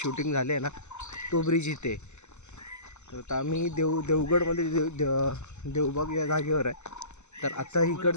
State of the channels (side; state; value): right; late; 0.83 ms